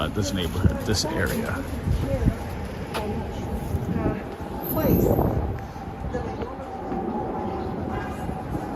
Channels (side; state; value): both; identical; correlation 1.00